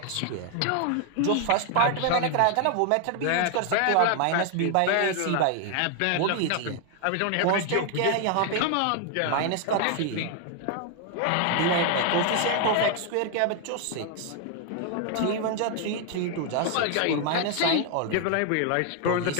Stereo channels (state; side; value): different; both; correlation 0.00